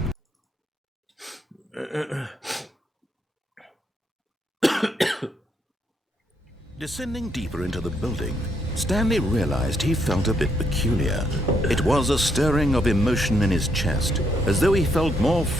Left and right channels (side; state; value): both; normal; correlation 0.75